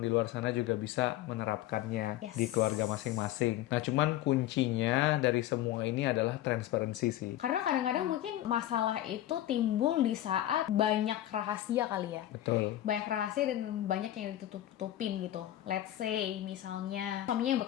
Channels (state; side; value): quieter; right; 13.5 dB